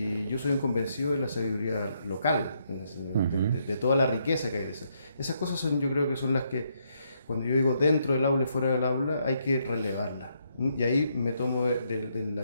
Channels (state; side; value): inverted; both; correlation -0.75